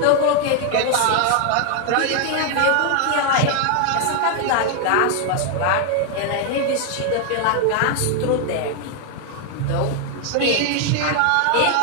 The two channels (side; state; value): both; different; correlation 0.00